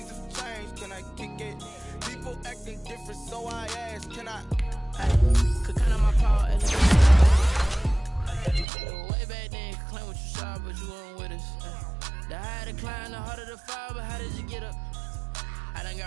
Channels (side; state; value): left; drops out; at 8.7 s